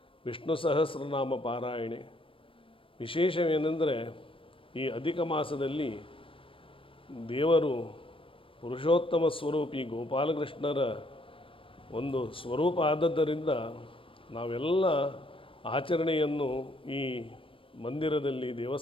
ವಿಷ್ಣು ಸಹಸ್ರನಾಮ ಪಾರಾಯಣೆ. ವಿಶೇಷವೇನೆಂದರೆ ಈ ಅಧಿಕ ಮಾಸದಲ್ಲಿ ದೇವರು ಪುರುಷೋತ್ತಮ ಸ್ವರೂಪಿ ಗೋಪಾಲಕೃಷ್ಣರ ಒಂದು ಸ್ವರೂಪ ಆದದ್ದರಿಂದ ನಾವೆಲ್ಲ ಆಚರಣೆಯನ್ನು ಈ ಮಂದಿರದಲ್ಲಿ,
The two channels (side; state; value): right; late; 0.25 ms